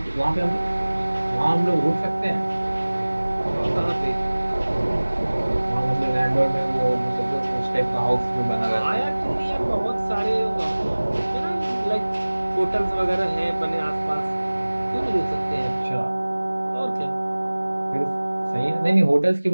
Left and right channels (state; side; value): inverted; both; correlation -1.00